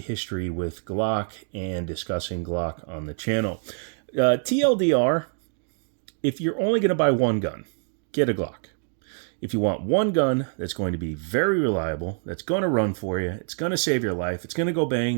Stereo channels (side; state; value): left; silent; 61 dB below the other